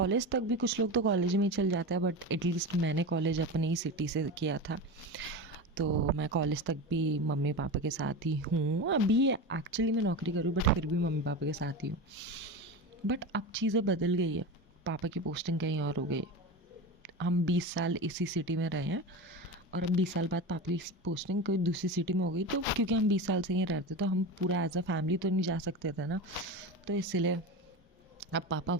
तक भी कुछ लोग तो कॉलेज में ही चल जाते हैं, बट एटलीस्ट मैंने कॉलेज अपनी ही सिटी से किया था, तो मैं कॉलेज तक भी मम्मी पापा के साथ ही हूँ। अभी एक्चुअली मैं नौकरी करूँ, बट फिर भी मम्मी पापा के साथ ही हूँ। बट अब चीज़ें बदल गई है, पापा की पोस्टिंग कहीं और हो गई है। हम 20 साल इसी सिटी में रहे हैं, और अब 20 साल बाद पापा की पोस्टिंग कोई दूसरी सिटी में हो गई, तो क्योंकि हम 20 साल से यहीं रहते तो हम पूरा एज अ फैमिली तो नहीं जा सकते थे ना, तो इसीलिए अब पापा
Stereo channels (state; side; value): normal; both; correlation 0.24